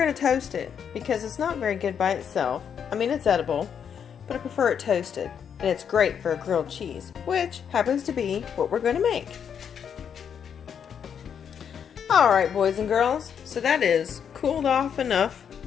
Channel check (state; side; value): quieter; right; 7.8 dB